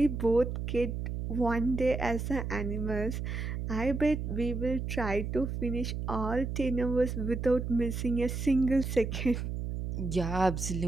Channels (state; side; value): noise; right; hum, 4 dB below the sound